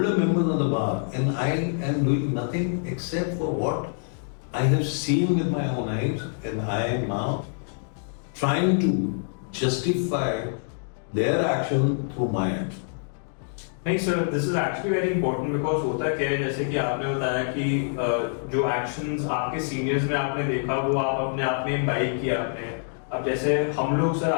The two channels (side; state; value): right; silent; digital silence